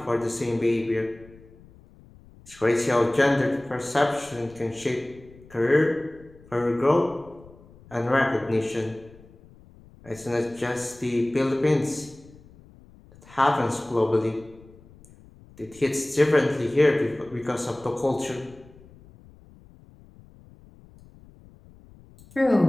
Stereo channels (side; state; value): left; noise; rumble, 24 dB below the sound